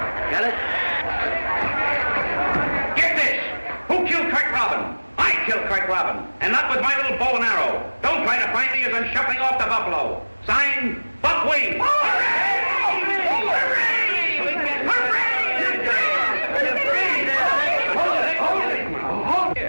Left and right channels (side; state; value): both; inverted; correlation -1.00